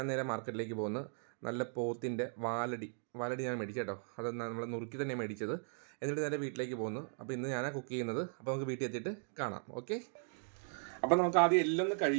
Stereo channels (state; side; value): silent; left; 53 dB below the other